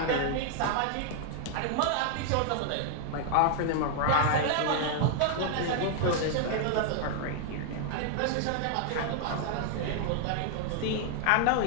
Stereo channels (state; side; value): different; both; correlation 0.00